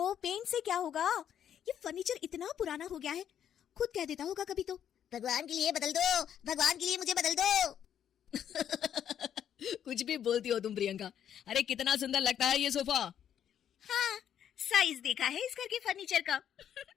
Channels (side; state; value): right; quieter; 9.5 dB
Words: पेंट से क्या होगा? ये फर्नीचर इतना पुराना हो गया है, खुद कह देता होगा कभी तो, भगवान के लिए बदल दो, भगवान के लिए मुझे बदल दो। कुछ भी बोलती हो तुम प्रियंका। अरे कितना सुंदर लगता है ये सोफा। हाँ, साइज देखा है इस घर के फर्नीचर का।